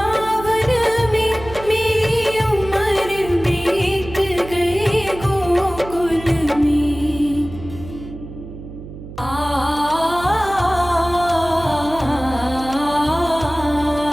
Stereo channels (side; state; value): right; noise; hum, 13 dB below the sound